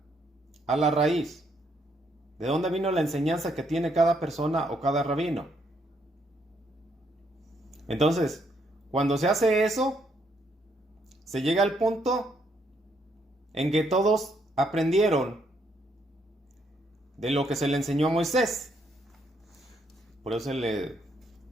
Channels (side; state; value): both; normal; correlation 0.73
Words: a la raíz, de dónde vino la enseñanza que tiene cada persona o cada rabino. Entonces, cuando se hace eso, se llega al punto en que todos aprendieron de lo que se le enseñó a Moisés. Por eso se le